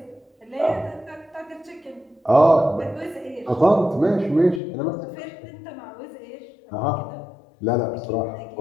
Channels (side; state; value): right; drops out; at 4.6 s